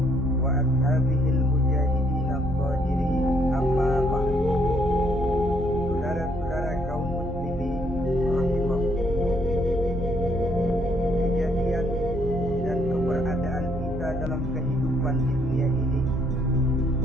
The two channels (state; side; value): normal; both; correlation 0.69